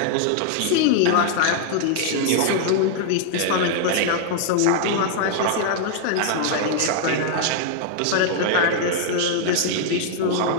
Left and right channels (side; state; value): both; different; correlation 0.00